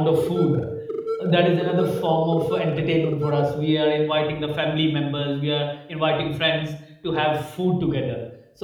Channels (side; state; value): both; identical; correlation 1.00